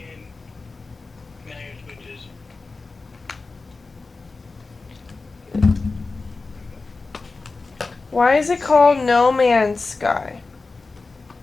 Why is it called No Man's Sky?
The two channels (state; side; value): quieter; right; 3.8 dB